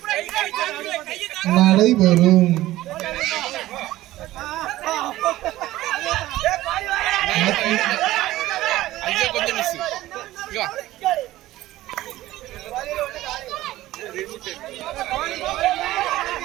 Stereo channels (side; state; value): left; quieter; 16.0 dB